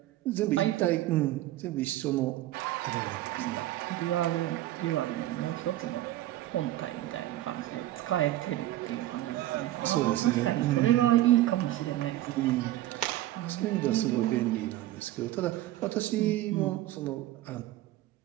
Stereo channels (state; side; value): quieter; left; 14.9 dB